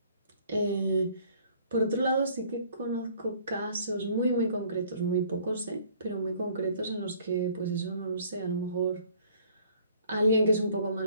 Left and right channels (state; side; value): inverted; both; correlation -0.58